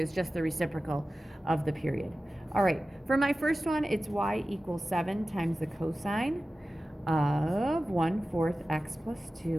just the reciprocal of the period. All right, for my first one, it's y equals 7 times the cosine of 1/4 x plus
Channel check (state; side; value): normal; both; correlation 0.95